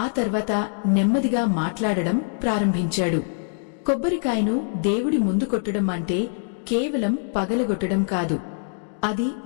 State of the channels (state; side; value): silent; right; 63 dB below the other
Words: ఆ తర్వాత నెమ్మదిగా మాట్లాడడం ప్రారంభించాడు. కొబ్బరికాయను దేవుడి ముందు కొట్టడం అంటే కేవలం పగలగొట్టడం కాదు. అది